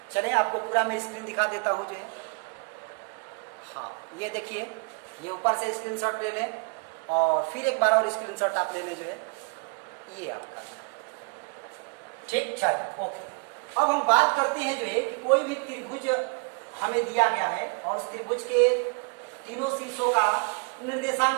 चलिए आपको पूरा मैं स्क्रीन दिखा देता हूँ जो है। हाँ, ये देखिए, ये ऊपर से स्क्रीनशॉट ले लें और फिर एक बार और स्क्रीनशॉट आप ले लें जो है, ये आपका ठीक। चलो ओके, अब हम बात करते हैं जो है कि कोई भी त्रिभुज हमें दिया गया है और उस त्रिभुज के तीनों शीर्षों का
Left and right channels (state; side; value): quieter; left; 37.8 dB